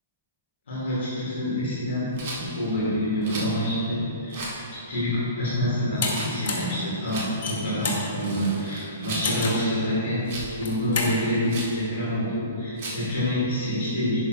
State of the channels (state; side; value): inverted; both; correlation -0.32